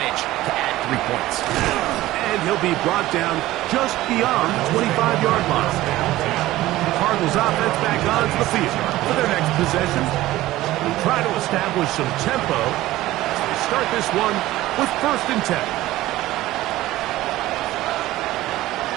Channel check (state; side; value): quieter; left; 16.4 dB